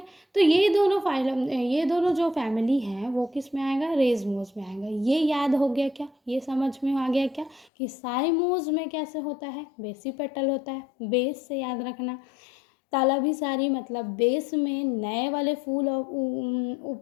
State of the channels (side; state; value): right; drops out; at 7.7 s